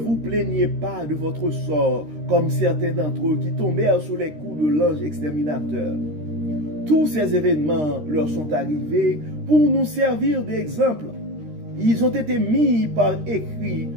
plaignez pas de votre sort, comme certains d'entre eux qui tombèrent sous les coups de l'ange exterminateur. Tous ces événements leur sont arrivés pour nous servir d'exemple. Ils ont été mis par écrit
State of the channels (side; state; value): left; late; 13 ms